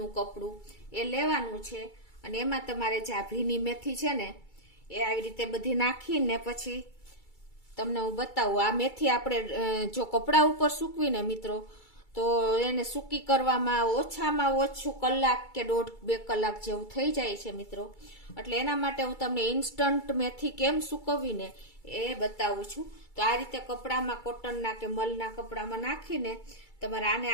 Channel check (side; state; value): right; late; 2.3 ms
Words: કપડું એ લેવાનું છે. અને એમાં તમારે જે આ ભીની મેથી છે ને એ આવી રીતે બધી નાખીને પછી તમને હું બતાવું. આ મેથી આપણે જો કપડા ઉપર સૂકવીને મિત્રો તો એને સૂકી કરવામાં ઓછામાં ઓછું કલાક કે 1.5-2 કલાક જેવું થઈ જાય છે મિત્રો. એટલે એના માટે હું તમને ઇન્સ્ટન્ટ મેથી કેમ સૂકવીને એ બતાવું છું. તો આ રીતે કપડામાં, કોટનના કે મલના કપડામાં નાખીને તમારે આને